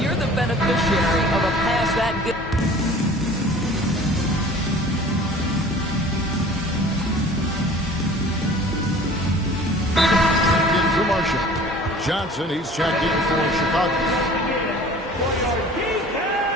the beneficiary of a pass that good... Into Marshall. Johnson, he's checked in for Chicago.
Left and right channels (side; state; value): both; normal; correlation 0.46